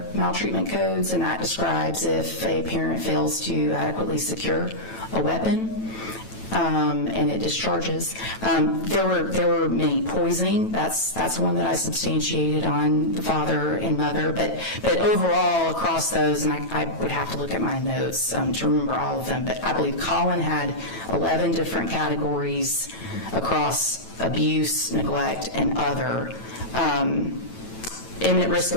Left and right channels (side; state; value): right; late; 9.1 ms